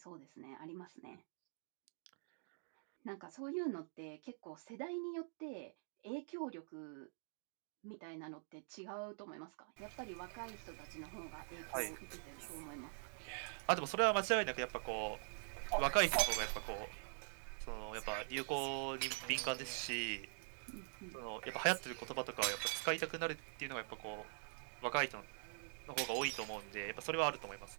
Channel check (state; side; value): silent; left; digital silence